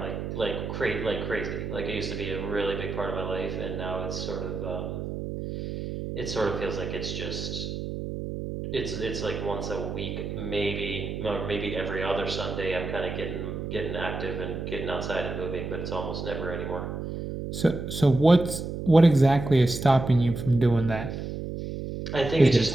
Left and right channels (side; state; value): right; noise; hum, 6 dB below the sound